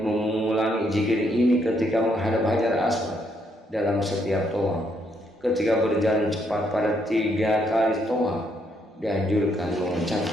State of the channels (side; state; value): both; normal; correlation 0.74